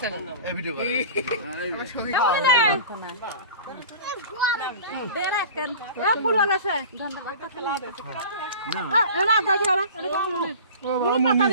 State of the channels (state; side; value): inverted; both; correlation -0.38